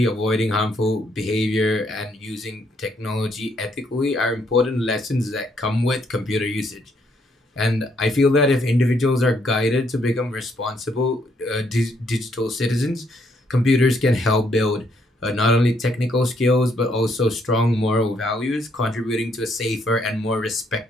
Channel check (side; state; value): both; normal; correlation 0.72